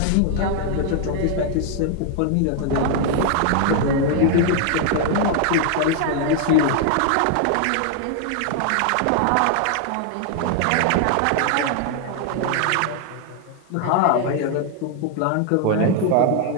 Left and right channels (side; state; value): both; different; correlation 0.00